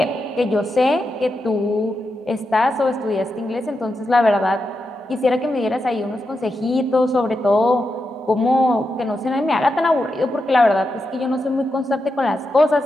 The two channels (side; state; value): both; normal; correlation 0.87